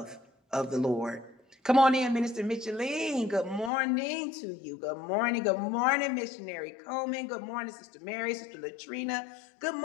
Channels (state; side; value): drops out; right; at 3.7 s